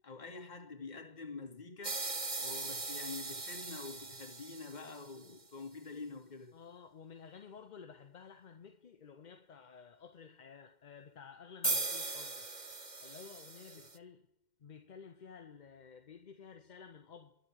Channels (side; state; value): right; late; 2.1 ms